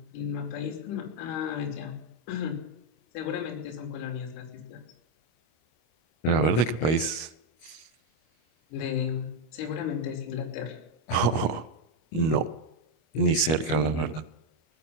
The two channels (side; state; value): right; late; 25 ms